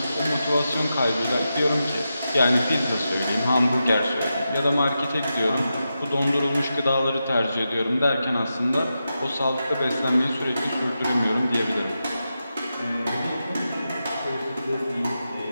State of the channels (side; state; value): both; inverted; correlation -0.89